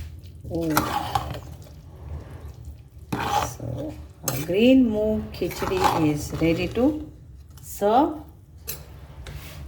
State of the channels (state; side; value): identical; both; correlation 1.00